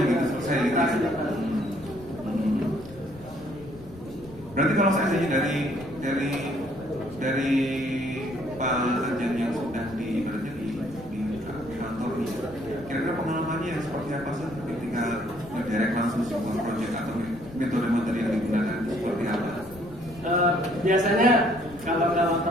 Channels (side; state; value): left; noise; rumble, 19 dB below the sound